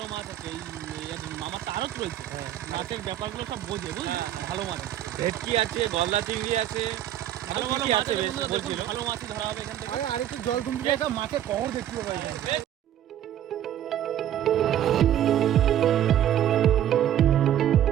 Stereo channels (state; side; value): quieter; left; 11.3 dB